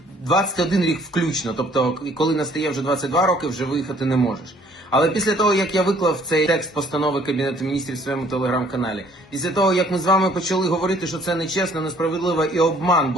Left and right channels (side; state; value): both; normal; correlation 0.60